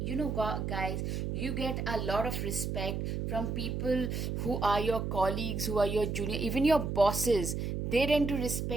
guys, you get a lot of respect from people who are your colleagues, who are your junior, even your bosses. They tend to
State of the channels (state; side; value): noise; right; hum, 2 dB below the sound